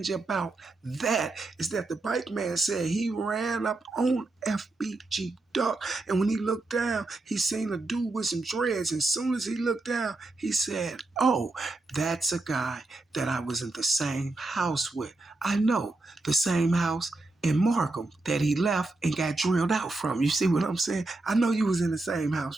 about that is that the bike man said he ran up on FBG Duck, and when he looked down, he seen a dude with some dreads. And as soon as he looked down, he said, "Oh, that's a guy that I was in the same house with. I know, the same house in Markham that he left and got drilled out from." You see what I'm saying? I know you was in the same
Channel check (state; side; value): quieter; left; 3.1 dB